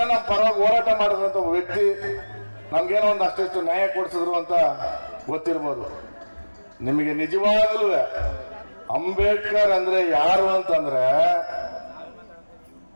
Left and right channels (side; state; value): both; inverted; correlation -1.00